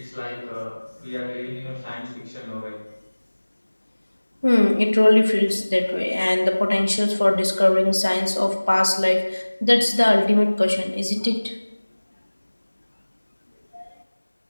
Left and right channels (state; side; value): inverted; both; correlation -1.00